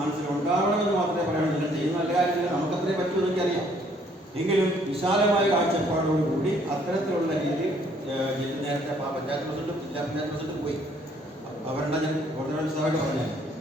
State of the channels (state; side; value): normal; both; correlation 0.63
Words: മാത്രമേ പറയാനുള്ളൂ. ചെയ്യുന്ന നല്ല കാര്യമില്ല, നമുക്കത്രേ പറ്റുമെന്ന് എനിക്കറിയാം. എങ്കിലും വിശാലമായ കാഴ്ചപ്പാടോടുകൂടി അത്തരത്തിലുള്ള രീതിയിൽ നേരത്തെ പഞ്ചായത്ത് പ്രസിഡന്റും ജില്ലാ പഞ്ചായത്ത് പ്രസിഡന്റും പോയി അവരുടെ ഞാൻ ഓർഡിനൻസായിട്ട് പറഞ്ഞാൽ